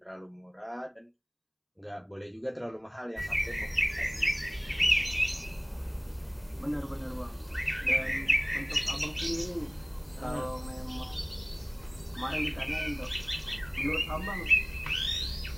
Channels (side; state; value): both; identical; correlation 1.00